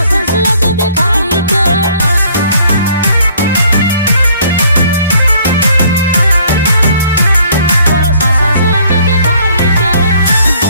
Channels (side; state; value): both; inverted; correlation -0.60